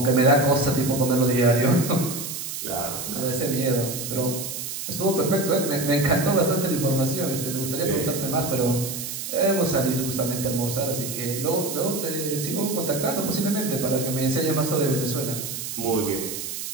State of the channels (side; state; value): right; noise; hiss, 6 dB below the sound